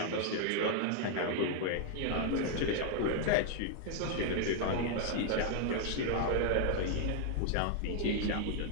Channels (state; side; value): different; both; correlation 0.00